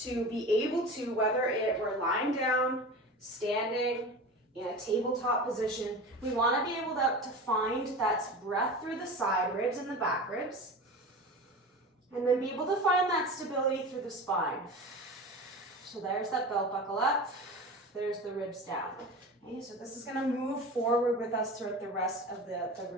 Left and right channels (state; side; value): normal; both; correlation 0.31